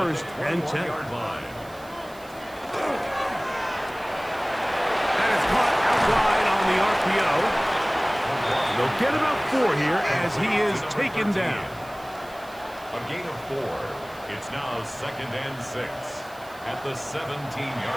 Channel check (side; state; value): right; noise; hiss, 23 dB below the sound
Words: and 10. That is caught out wide on the RPO. They'll get about 4 here as he is taken down. A gain of 4. It's now 2nd and 6 at the